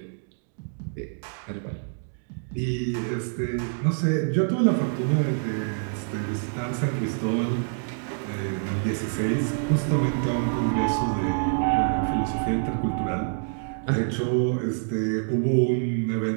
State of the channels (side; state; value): left; silent; digital silence